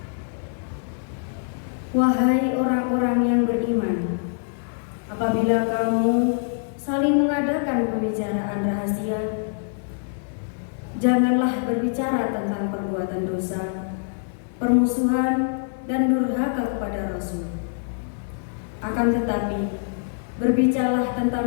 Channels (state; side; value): silent; right; 62 dB below the other